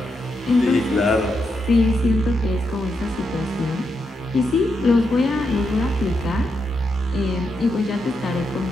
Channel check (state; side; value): normal; both; correlation 0.83